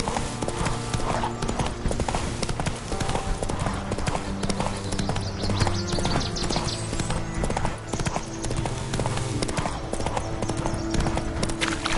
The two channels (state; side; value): identical; both; correlation 1.00